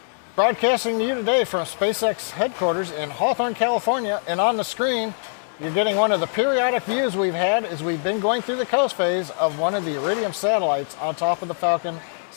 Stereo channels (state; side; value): silent; right; digital silence